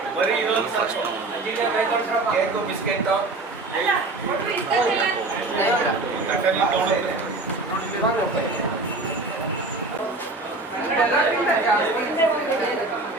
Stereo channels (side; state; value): left; quieter; 3.2 dB